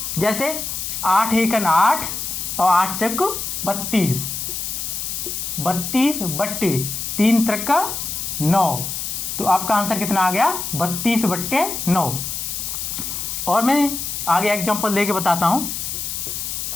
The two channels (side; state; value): left; noise; hiss, 4 dB below the sound